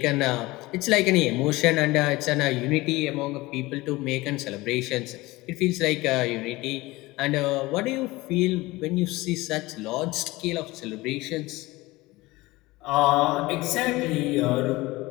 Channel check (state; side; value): quieter; right; 20.5 dB